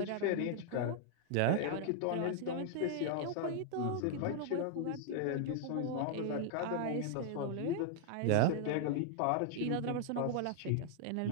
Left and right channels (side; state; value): both; different; correlation -0.01